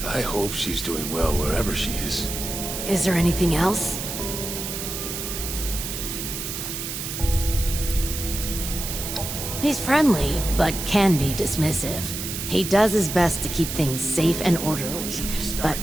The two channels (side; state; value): right; noise; hiss, 5 dB below the sound